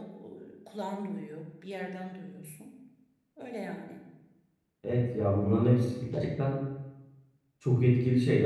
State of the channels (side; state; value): both; identical; correlation 1.00